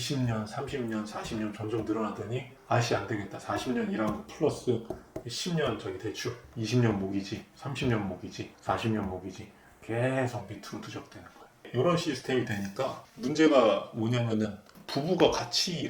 30년, 40년 점점 늘어나더니 아씨 안 되겠다. 40년 일한 거 플러스 10년 저기 대출, 20년 모기지, 30년 모기지, 40년 모기지, 계속 밑으로 누적되는 거예요. 이런 시스템이 되니까 문제가 뭐냐면은 부부가 같이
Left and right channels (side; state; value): both; identical; correlation 1.00